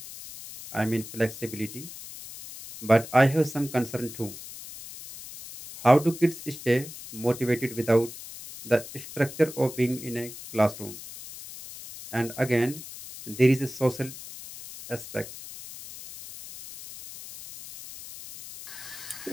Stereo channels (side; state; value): left; noise; hiss, 13 dB below the sound